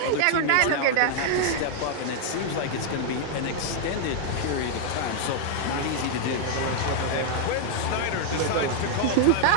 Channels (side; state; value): both; different; correlation 0.00